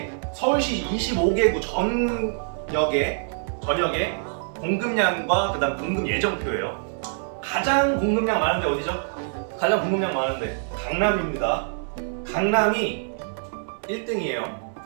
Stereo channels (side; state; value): left; silent; 62 dB below the other